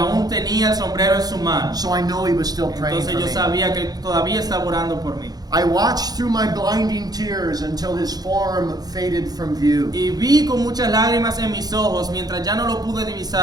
tenía el sombrero en su mano. So I know he was still praying Entonces for yo me. sabía que él todavía estaba orando por mí. I watched through my blinding tears until his form faded from view. Y vi con muchas lágrimas en mis ojos mientras ya no lo pude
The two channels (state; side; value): late; left; 0.19 ms